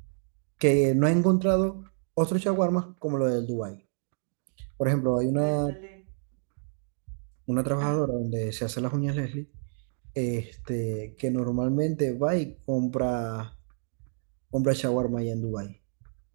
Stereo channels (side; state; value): left; silent; digital silence